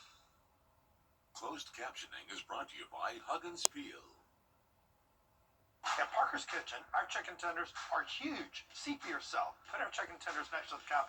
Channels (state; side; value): identical; both; correlation 1.00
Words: Closed captioning is brought to you by Huggins Peel. At Parker's Kitchen, our chicken tenders are huge. See for yourself. Put our chicken tenders next to the